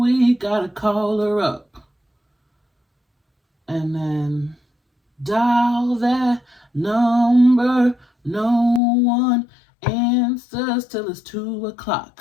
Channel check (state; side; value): drops out; right; at 8.8 s